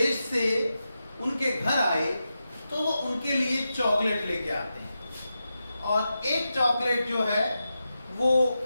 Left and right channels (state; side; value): inverted; both; correlation -0.90